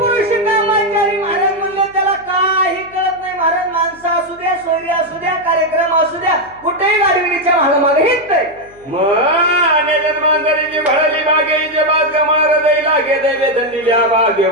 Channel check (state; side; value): noise; left; hum, 27 dB below the sound